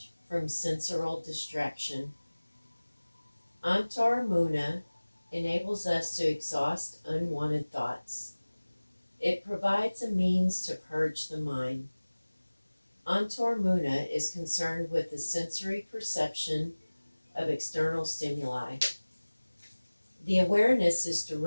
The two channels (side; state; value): both; inverted; correlation -1.00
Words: from sensorial distraction. Antaramuna enables us to exhaust unwanted thoughts. It provides a means to purge the mind. Antaramuna is concerned with the sensory perception of external stimuli. The awareness is